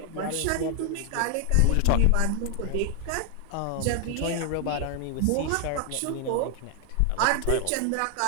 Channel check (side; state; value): both; different; correlation 0.00